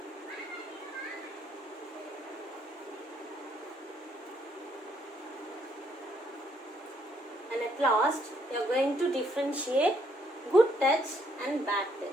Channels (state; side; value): normal; both; correlation 0.70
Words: and at last you are going to differentiate good touch and bad